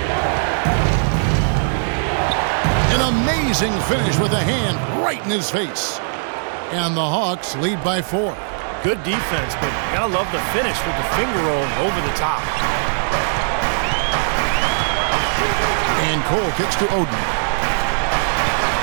An amazing finish with a hand right in his face. And the Hawks lead by 4. Good defense, but gotta love the finish with the finger roll over the top. And Cole kicks to Oden.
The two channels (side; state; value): left; silent; 63 dB below the other